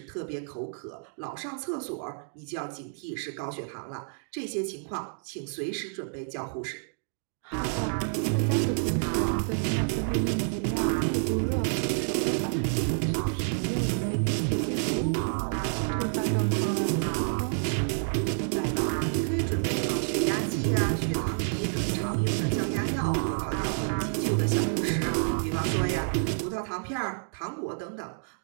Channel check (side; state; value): left; silent; digital silence